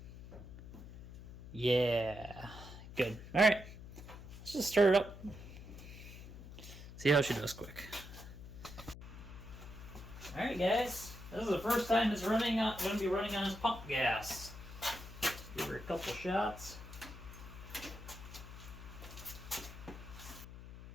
Yeah. Good. Alright. Let's just start it up. See how she does quick. Alright guys. This is the first time it's going to be running on this pump gas. Give her a couple shots.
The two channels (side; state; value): left; noise; hum, 13 dB below the sound